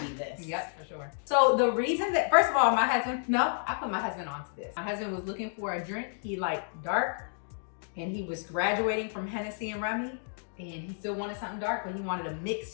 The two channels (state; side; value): silent; right; digital silence